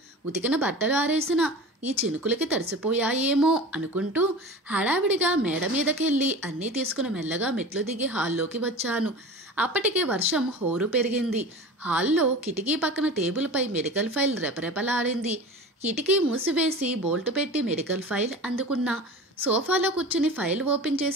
ఉతికిన బట్టలు ఆరేసిన. ఈ చినుకులకి తడిసిపోయాయేమో అనుకుంటూ హడావిడిగా మేడ మీదకెళ్ళి అన్నీ తీసుకుని మెల్లగా మెట్లు దిగి హాల్లోకి వచ్చాను. అప్పటికే వర్షం హోరు పెరిగింది. హాల్లో కిటికీ పక్కన టేబుల్పై మెడికల్ ఫైల్ రెపరెపలాడింది. కిటికీ మూసివేసి బోల్టు పెట్టి మెడికల్ ఫైల్ అందుకున్నా. సోఫాలో కూర్చుని ఫైల్ ఓపెన్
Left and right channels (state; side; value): normal; both; correlation 0.35